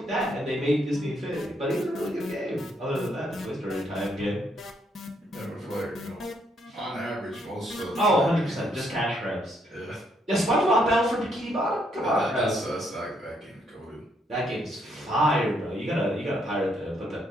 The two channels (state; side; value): normal; both; correlation 0.73